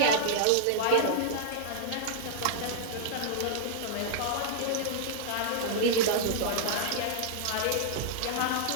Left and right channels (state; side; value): different; both; correlation -0.01